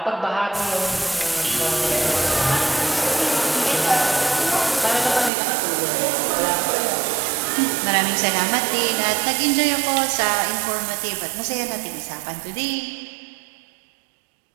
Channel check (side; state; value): left; drops out; at 5.3 s